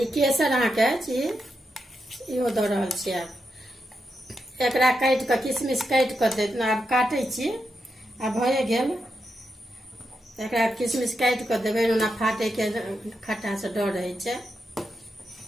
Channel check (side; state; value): both; normal; correlation 0.85